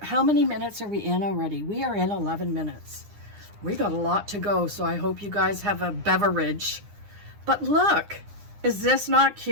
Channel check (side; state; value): left; late; 9.7 ms